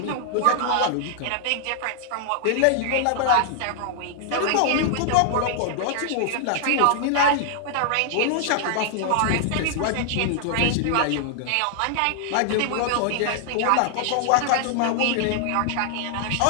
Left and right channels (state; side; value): different; both; correlation -0.01